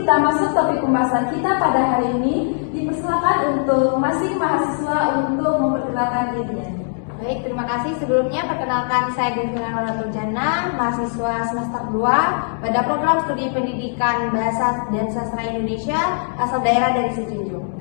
masuk topik pembahasan kita pada hari ini, dipersilakan untuk masing mahasiswa untuk memperkenalkan dirinya. Baik, terima kasih. Sebelumnya perkenalkan saya Devina Nurjana, mahasiswa semester 2 pada program studi pendidikan bahasa dan sastra Indonesia asal daerah dari Sijunjung.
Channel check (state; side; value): silent; right; digital silence